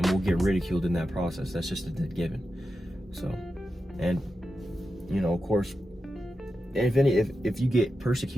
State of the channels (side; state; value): both; normal; correlation 0.90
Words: we'll get ridiculed in that process. That's just a dead given. So, and, you know, of course, if you get